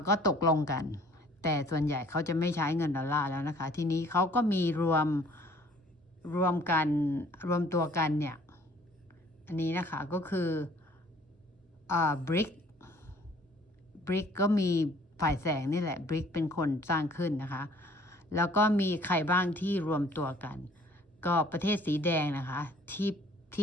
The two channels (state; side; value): normal; both; correlation 0.56